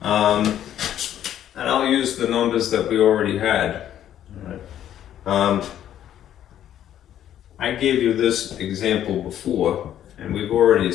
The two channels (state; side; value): quieter; right; 11.0 dB